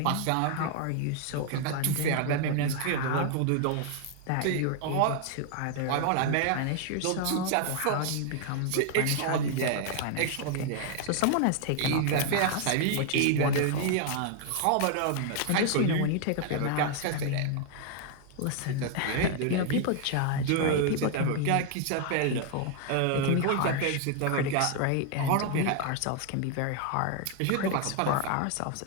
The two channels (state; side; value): different; both; correlation 0.00